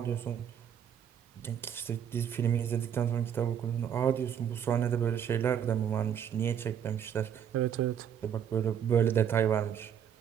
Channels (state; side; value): quieter; left; 8.8 dB